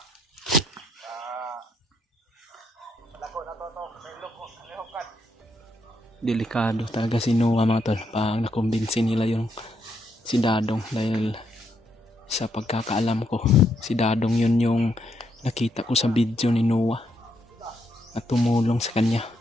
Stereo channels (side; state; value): both; normal; correlation 0.77